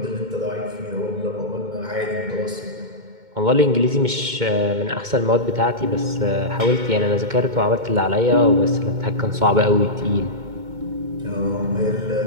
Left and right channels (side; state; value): left; late; 2.2 ms